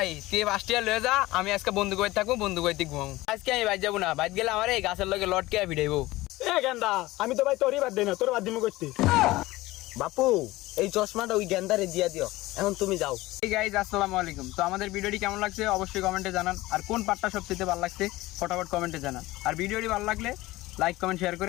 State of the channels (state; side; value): quieter; right; 18.8 dB